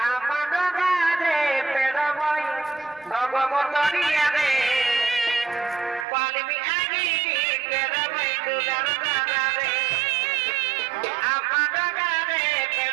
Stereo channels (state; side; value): drops out; left; at 6.1 s